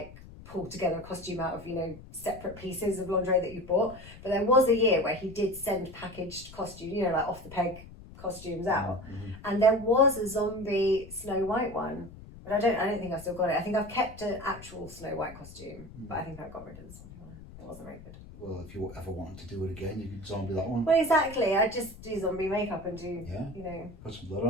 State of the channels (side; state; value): left; noise; rumble, 17 dB below the sound